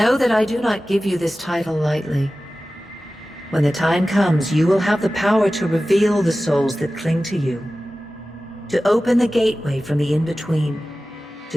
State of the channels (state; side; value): normal; both; correlation 0.95